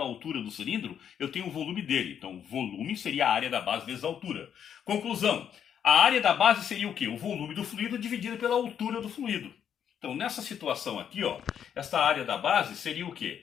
altura do cilindro, eu tenho o volume dele. Então, volume seria a área da base vezes a altura. Conclusão. A área da base seria o quê? O volume do fluido dividido pela altura do fluido. Então, nessa situação aqui, ó, essa área da base seria o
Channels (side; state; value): right; quieter; 8.7 dB